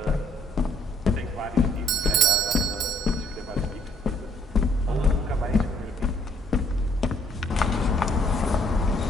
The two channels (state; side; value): normal; both; correlation 0.65